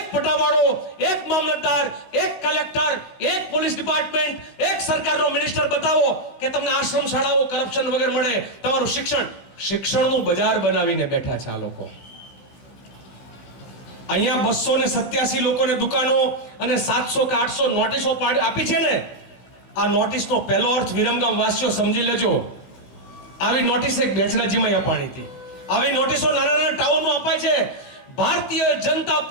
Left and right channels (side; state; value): right; late; 16 ms